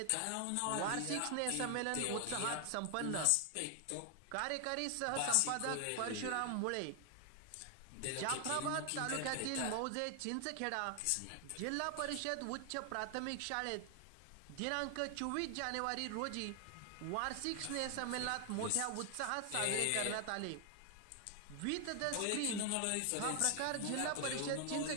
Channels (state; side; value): different; both; correlation 0.00